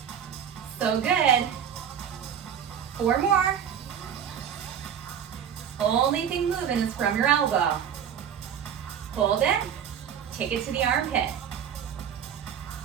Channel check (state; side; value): quieter; left; 8.5 dB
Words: So good. 4 more. Only thing moving is from your elbow. Hold it. Take it to the armpit.